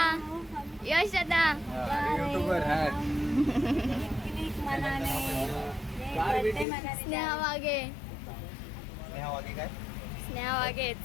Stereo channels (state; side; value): drops out; right; at 6.7 s